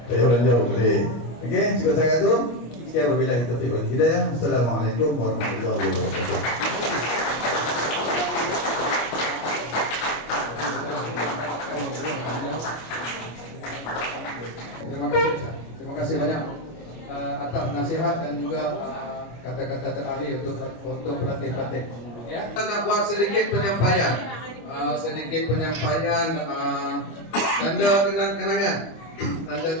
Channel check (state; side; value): late; right; 25 ms